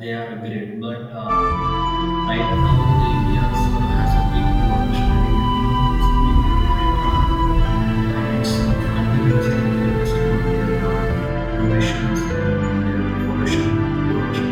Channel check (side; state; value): both; identical; correlation 1.00